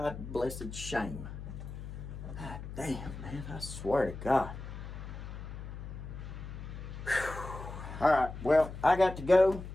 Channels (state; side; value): noise; left; hum, 10 dB below the sound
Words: shame. God damn, man. I swear to God. Whew. All right, well, I got to go